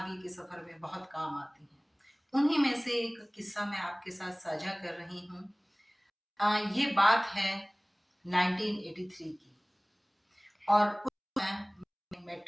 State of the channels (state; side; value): identical; both; correlation 1.00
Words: के सफ़र में बहुत काम आती हैं। उन्हीं में से एक किस्सा मैं आपके साथ साझा कर रही हूँ। ये बात है 1983 की और उस समय मैंने